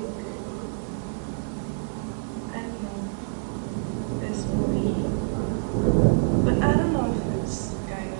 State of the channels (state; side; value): silent; left; digital silence